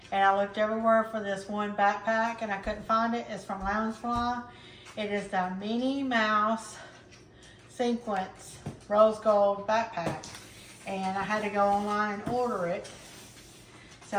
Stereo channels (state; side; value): identical; both; correlation 1.00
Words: and I looked everywhere for this one backpack and I couldn't find it. It's from Loungefly. It is the Minnie Mouse Sequence Rose Gold backpack, and I had to go online and order it.